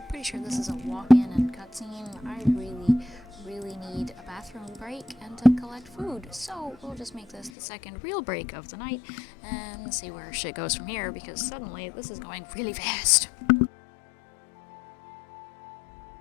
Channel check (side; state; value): right; drops out; at 7.5 s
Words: Pretty sure this is a walk-in and cutscene. I really need a bathroom break and to collect food. So we'll just make this the second real break of the night and see where shit goes from here, because suddenly this is going really fast.